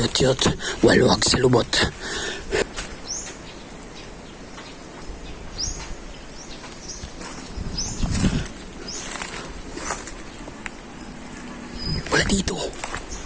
waluwag sa lubot. Wala dito.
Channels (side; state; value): both; identical; correlation 1.00